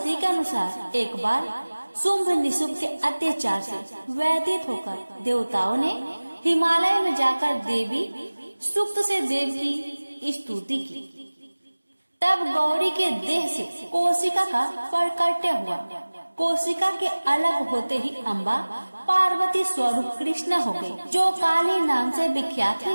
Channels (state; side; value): inverted; both; correlation -1.00